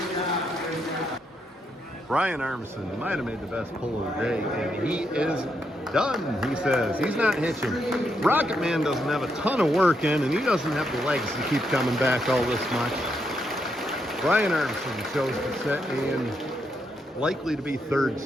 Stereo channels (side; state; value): both; normal; correlation 0.79